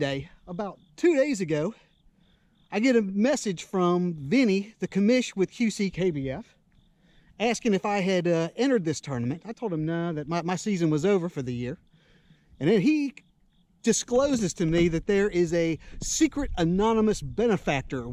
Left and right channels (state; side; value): identical; both; correlation 1.00